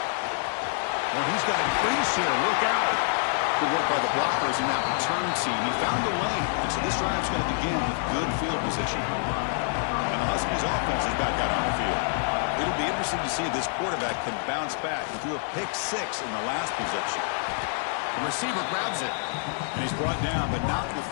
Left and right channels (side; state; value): right; silent; 60 dB below the other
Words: Oh, he's got a crease here. Look out. Good work by the blockers in that return team. He found the lane, and so this drive's going to begin with good field position. And the Huskies offense is back out on the field. It'll be interesting to see if this quarterback can bounce back. He threw a pick six in the last possession. The receiver grabs it, and he's brought down, but not